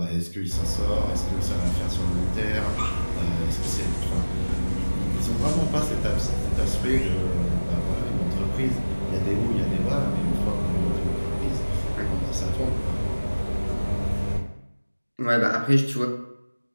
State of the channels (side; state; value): both; inverted; correlation -1.00